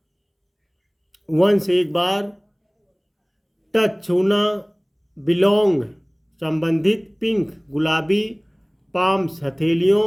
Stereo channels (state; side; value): identical; both; correlation 1.00